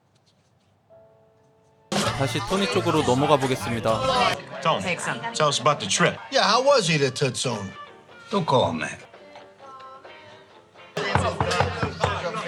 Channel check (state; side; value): identical; both; correlation 1.00